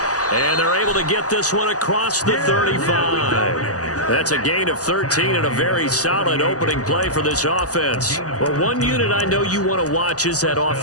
And they're able to get this one across the 35. That's a gain of 13 and a very solid opening play for this offense. Well, one unit I know you want to watch is that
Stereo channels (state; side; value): late; right; 0.67 ms